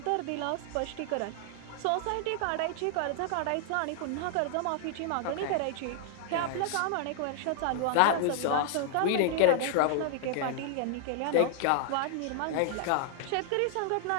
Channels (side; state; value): both; different; correlation -0.01